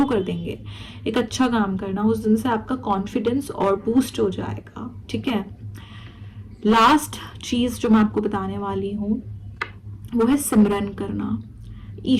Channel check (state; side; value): identical; both; correlation 1.00